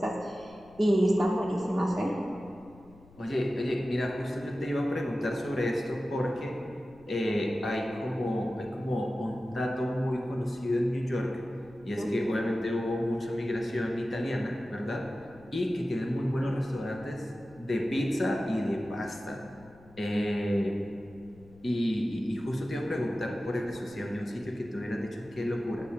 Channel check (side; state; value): left; noise; rumble, 24 dB below the sound